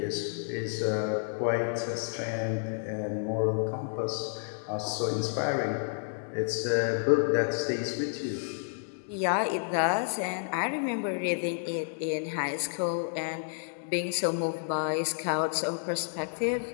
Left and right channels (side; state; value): right; silent; digital silence